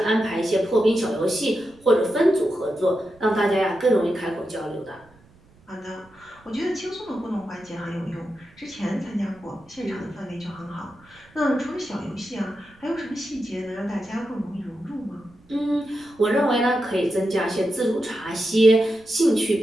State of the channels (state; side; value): noise; right; rumble, 29 dB below the sound